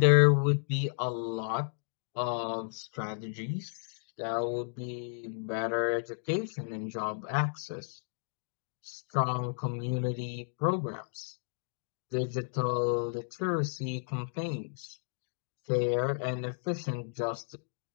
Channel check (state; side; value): silent; right; digital silence